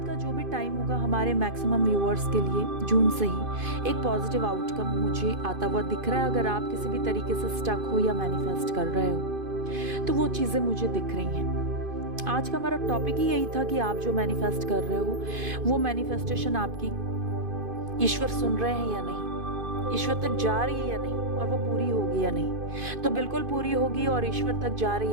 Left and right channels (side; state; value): left; late; 2.5 ms